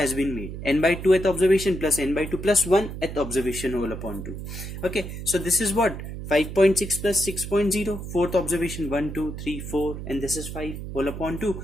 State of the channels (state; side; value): noise; right; hum, 8 dB below the sound